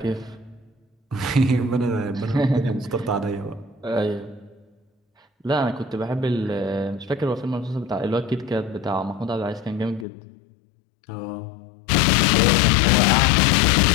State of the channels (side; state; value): right; drops out; at 10.1 s